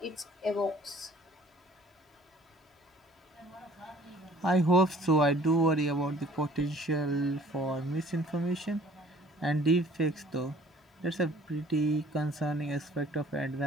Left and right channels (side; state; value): both; normal; correlation 0.54